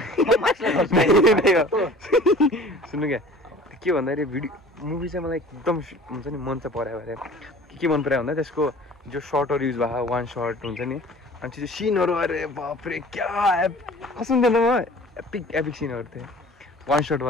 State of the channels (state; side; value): normal; both; correlation 0.46